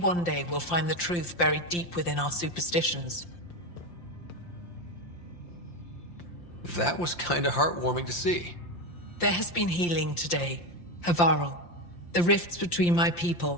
day we'll find the truth buried deep within our superstitions. That was kinda heartwarming to see. There has been healing today, Havarl. The rifts between my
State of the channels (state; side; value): late; right; 5.8 ms